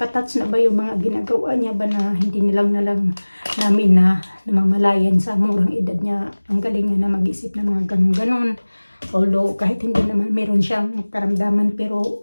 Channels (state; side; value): inverted; both; correlation -1.00